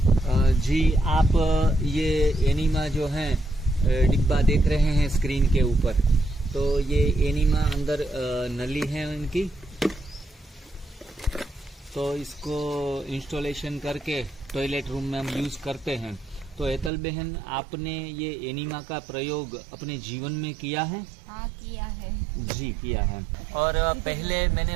जी, आप ये एनीमा जो है डिब्बा देख रहे हैं स्क्रीन के ऊपर, तो ये एनीमा अंदर नली है इनकी, तो इसको इंस्टॉलेशन करके टॉयलेट रूम में हम यूज करते हैं। तो हेतल बहन, आपने ये एनीमा का प्रयोग अपने जीवन में किया है? हाँ, किया है जी, किया है। और पहले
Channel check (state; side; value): drops out; left; at 16.9 s